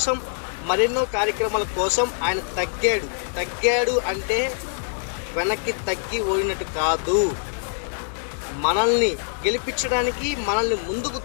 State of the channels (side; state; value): right; silent; digital silence